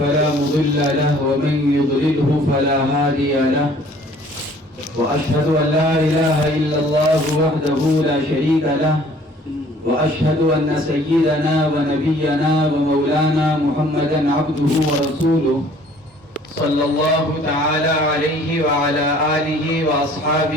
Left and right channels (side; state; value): both; normal; correlation 0.55